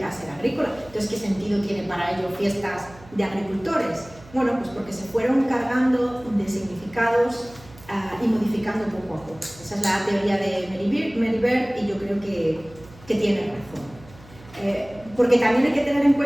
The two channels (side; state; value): right; noise; hum, 22 dB below the sound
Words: a ser agrícola. Entonces, ¿qué sentido tiene para ello fiestas de agricultores? Bueno, pues porque se fueron cargando de significados y modificando poco a poco. Esa es la teoría de Mary Beard y yo creo que tiene razón. Porque también hay que tener en